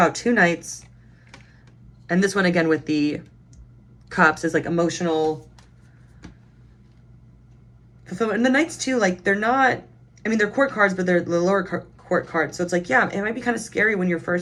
two knights. And this one again with the cups is like emotional fulfillment. And the knights too, like they're not, I mean, they're court cards, but they're the lower court cards. So it's like, yeah, it might be kind of scary when you're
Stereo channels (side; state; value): both; identical; correlation 1.00